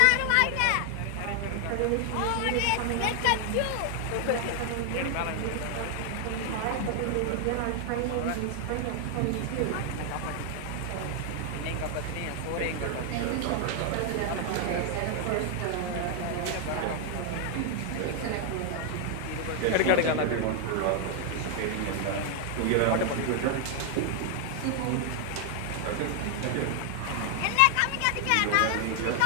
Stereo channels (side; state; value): both; different; correlation 0.00